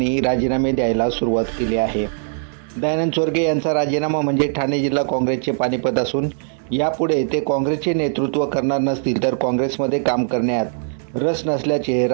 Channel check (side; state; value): left; silent; digital silence